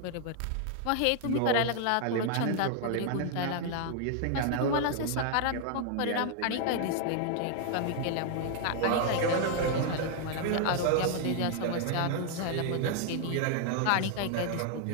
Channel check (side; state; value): both; different; correlation 0.00